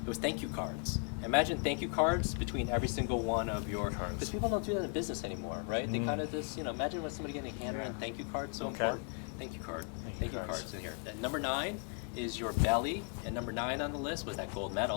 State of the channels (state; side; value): quieter; right; 36.5 dB